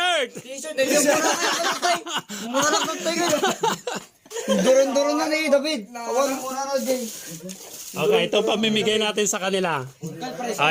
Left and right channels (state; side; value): identical; both; correlation 1.00